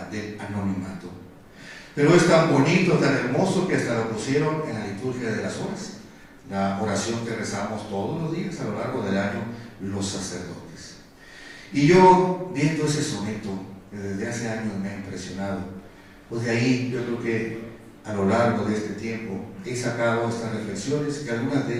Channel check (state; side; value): identical; both; correlation 1.00